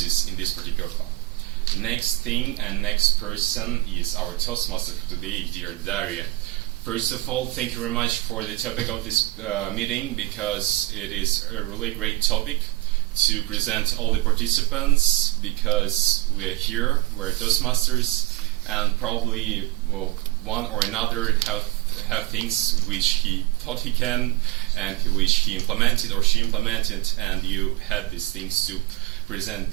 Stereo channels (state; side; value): quieter; left; 18.2 dB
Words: in this particular club. Next thing and next person is our Toastmaster for today, dear Daria. First of all, thank you very much for the topic of this meeting, because it is a really great topic to present all the participants, because we're here, we're Toastmasters, and probably one or another have things which he thought he can and which he implemented or she implemented, and you had these things to present